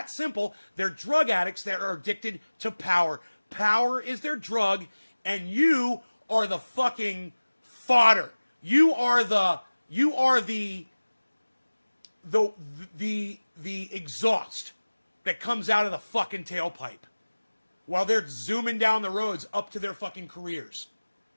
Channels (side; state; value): both; inverted; correlation -1.00